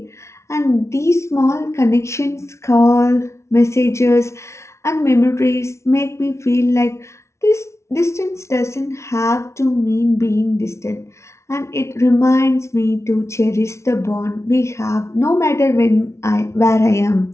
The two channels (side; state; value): right; late; 0.13 ms